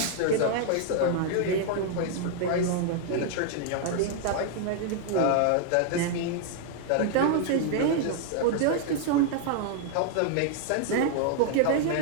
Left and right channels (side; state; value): both; different; correlation -0.01